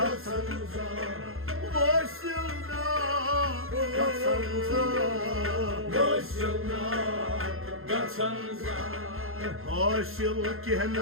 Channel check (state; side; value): late; left; 0.61 ms